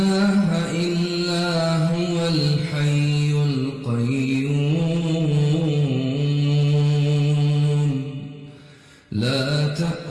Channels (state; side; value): identical; both; correlation 1.00